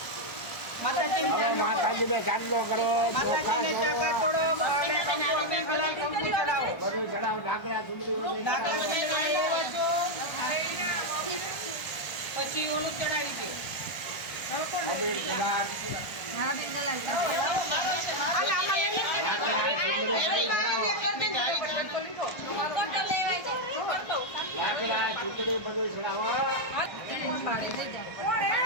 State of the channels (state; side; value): late; right; 1.3 ms